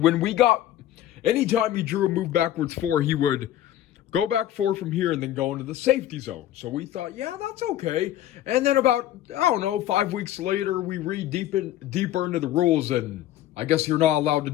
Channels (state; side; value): quieter; right; 12.7 dB